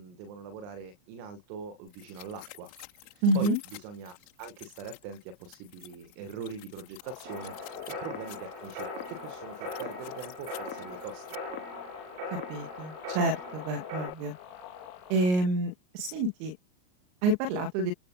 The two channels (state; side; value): late; left; 39 ms